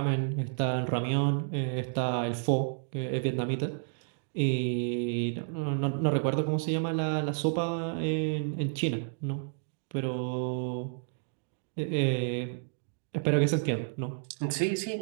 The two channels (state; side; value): silent; left; digital silence